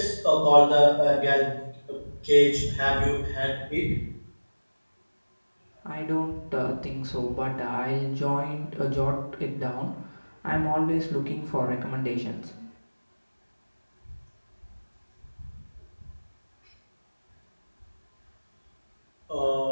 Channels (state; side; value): inverted; both; correlation -1.00